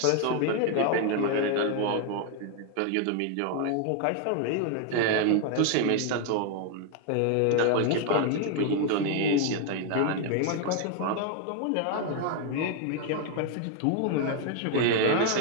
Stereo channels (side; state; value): both; different; correlation 0.00